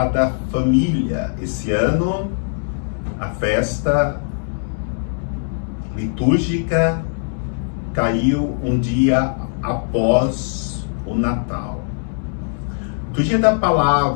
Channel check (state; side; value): silent; right; digital silence